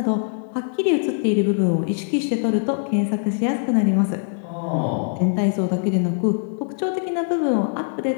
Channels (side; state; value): right; silent; digital silence